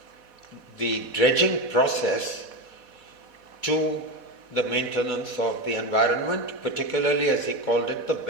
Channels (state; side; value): late; left; 4.1 ms